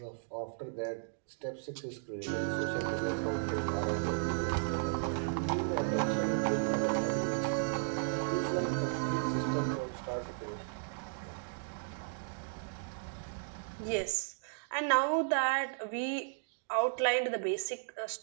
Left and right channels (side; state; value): left; silent; digital silence